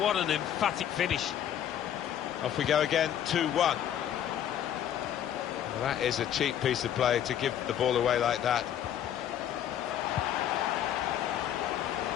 an emphatic finish. Off we go again, 2-1. Well, that is a cheap piece of play to give the ball away like that.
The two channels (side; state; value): right; quieter; 10.3 dB